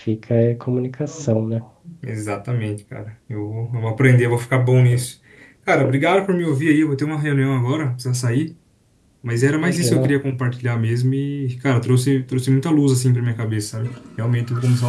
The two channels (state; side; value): identical; both; correlation 1.00